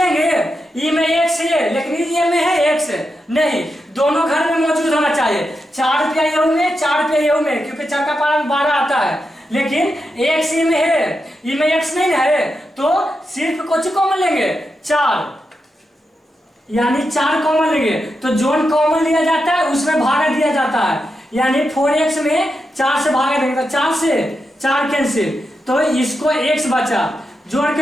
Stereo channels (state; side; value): normal; both; correlation 0.87